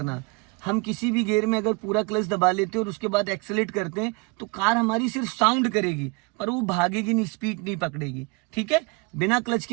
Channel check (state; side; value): quieter; left; 29.0 dB